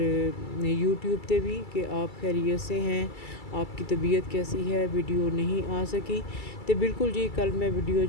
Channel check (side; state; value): right; late; 2.3 ms